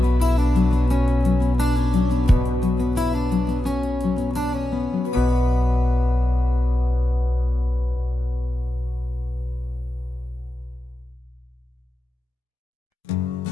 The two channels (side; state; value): both; normal; correlation 0.90